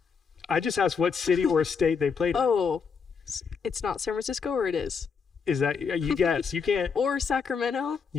I just asked what city or state they played in. Oh, it's not San Francisco, or it is? Is that... You guess. You can't... Or Sacramento?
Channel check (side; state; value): right; quieter; 5.8 dB